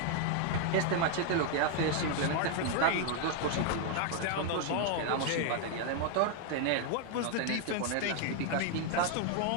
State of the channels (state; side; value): different; both; correlation 0.00